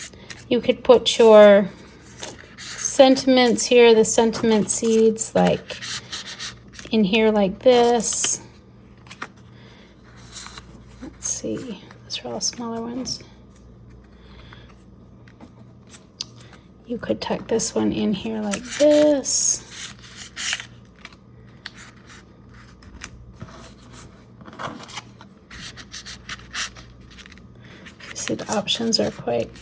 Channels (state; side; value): identical; both; correlation 1.00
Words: you could put your sentiments here, the sentiment seeds, like in here like this. Let's see, those are all smaller ones. You could tuck this one in here like this. You see the options are quite